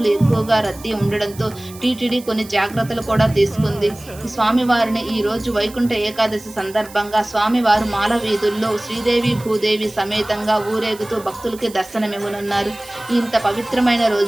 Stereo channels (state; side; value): noise; right; hiss, 19 dB below the sound